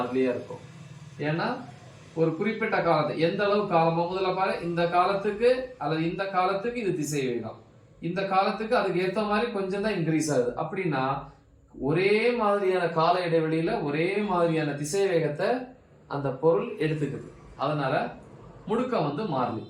இருக்கும். ஏன்னா ஒரு குறிப்பிட்ட காலத்தை, எந்த அளவு காலமோ, முதல்ல பாரு, இந்த காலத்துக்கு அல்லது இந்த காலத்துக்கு இது திசை வேகம், இந்த காலத்துக்கு அதுக்கு ஏத்த மாதிரி கொஞ்சம் தான் இன்க்ரீஸ் ஆகுது. அப்படின்னா ஒரே மாதிரியான கால இடைவெளியில ஒரே மாதிரியான திசை வேகத்தை அந்த பொருள் எடுத்துக்குது. அதனால முடுக்கம் மாறலி.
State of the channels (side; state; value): both; identical; correlation 1.00